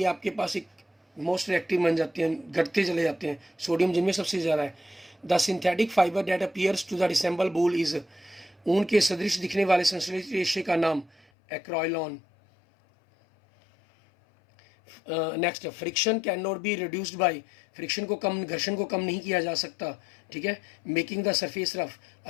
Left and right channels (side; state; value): right; drops out; at 11.2 s